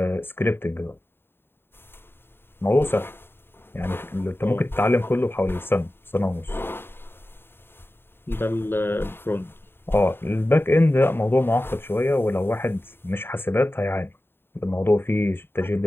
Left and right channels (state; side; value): late; right; 0.11 ms